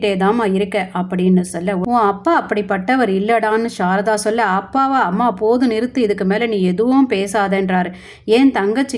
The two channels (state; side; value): identical; both; correlation 1.00